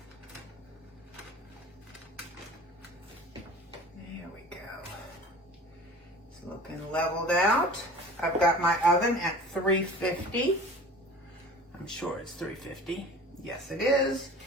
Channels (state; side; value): normal; both; correlation 0.41